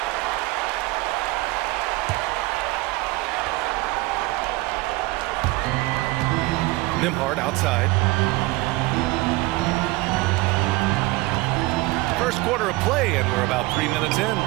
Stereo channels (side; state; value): left; quieter; 21.4 dB